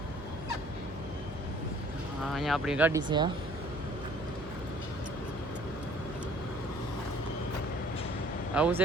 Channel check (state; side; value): noise; right; hum, 15 dB below the sound